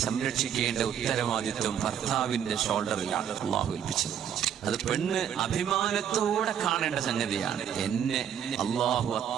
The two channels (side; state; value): left; quieter; 9.0 dB